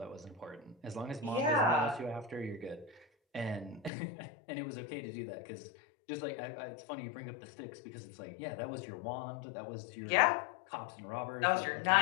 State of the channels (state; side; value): drops out; right; at 3.9 s